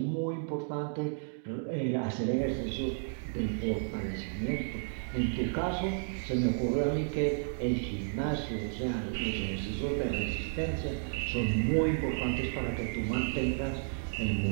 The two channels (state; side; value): silent; left; digital silence